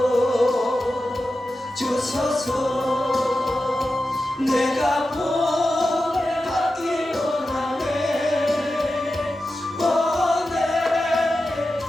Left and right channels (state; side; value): normal; both; correlation 0.92